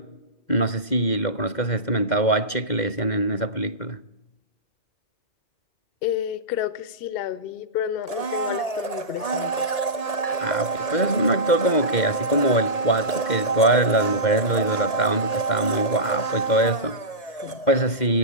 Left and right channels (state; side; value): late; right; 1.8 ms